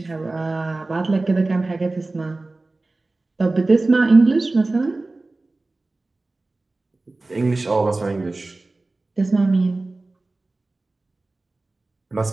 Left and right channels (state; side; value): quieter; left; 3.2 dB